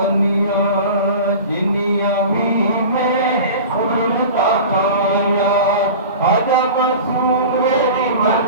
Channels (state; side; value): inverted; both; correlation -0.35